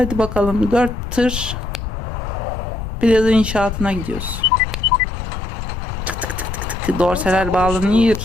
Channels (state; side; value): noise; left; rumble, 6 dB below the sound